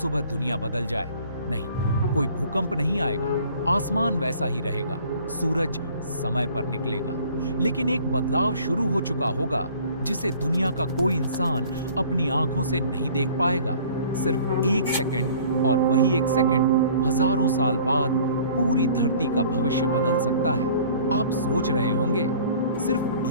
दुनिया बदल जाए, नहीं, कोई भूकंप नहीं आएगा, आसमान वैसा ही रहेगा, सूरज समय पर निकलेगा, लेकिन एक बदलाव शुरू हो चुका होगा जिसे दुनिया का कोई इंसान अपनी आंखों से नहीं देख पाएगा। सिर्फ एक सेकंड, और वही एक सेकंड हजारों साल बाद पूरी धरती का भविष्य बदल सकता है। आप सोच रहे होंगे सिर्फ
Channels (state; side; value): inverted; both; correlation -0.51